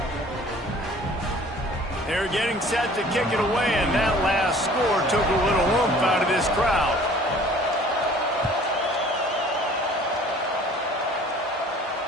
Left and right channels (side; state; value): both; normal; correlation 0.50